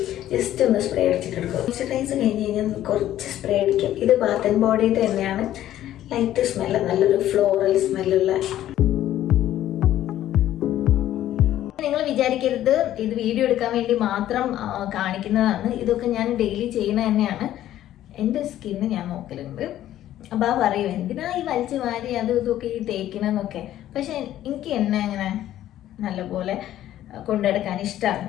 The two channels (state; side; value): quieter; right; 12.8 dB